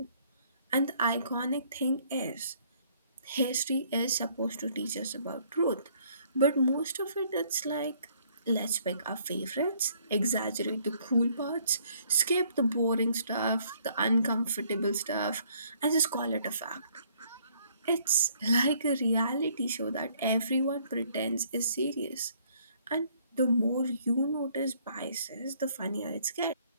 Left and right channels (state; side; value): inverted; both; correlation -0.63